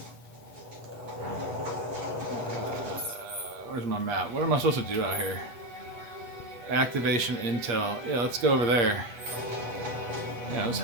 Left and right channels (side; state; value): left; late; 8.5 ms